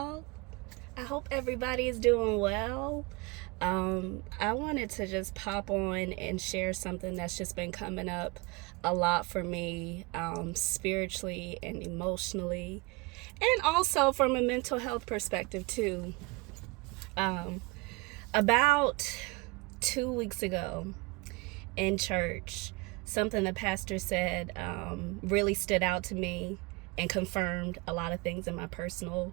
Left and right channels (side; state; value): left; quieter; 25.8 dB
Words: I hope everybody is doing well. I wanted to just pop on and share something that's just been coming up a lot for me, spiritually and emotionally, and also from a mental health perspective, too. Um, about 2 weeks ago in church, something the pastor said really stood out to me and confirmed a lot of things in my